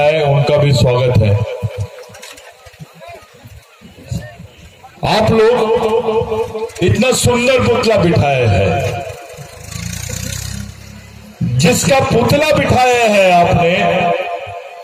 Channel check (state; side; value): identical; both; correlation 1.00